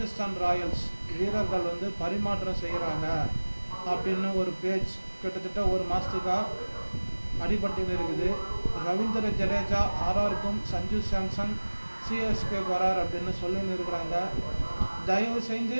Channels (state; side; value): inverted; both; correlation -1.00